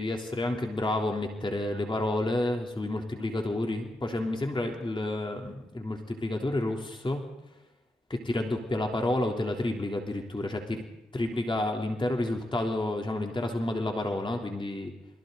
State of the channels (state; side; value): normal; both; correlation 0.85